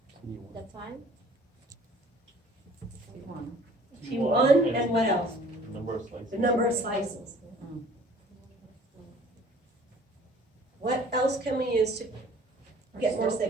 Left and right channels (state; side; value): normal; both; correlation 0.52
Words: The time. T1 and what else? Number of slices. The number of slices. What else can we use to get more